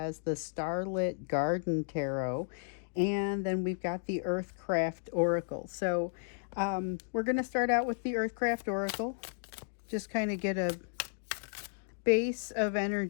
the Starlit Garden Tarot. And then we've got the Earthcraft Oracle. So we're going to start out with the Earthcraft Oracle. Just kind of get a base of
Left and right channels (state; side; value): silent; right; digital silence